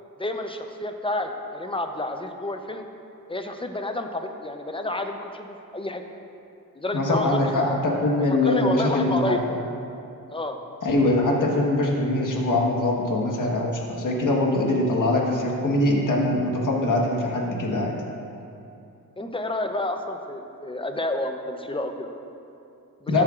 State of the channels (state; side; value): normal; both; correlation 0.28